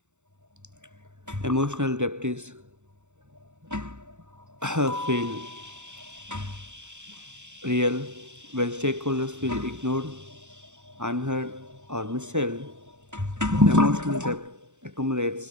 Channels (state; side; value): late; left; 0.84 ms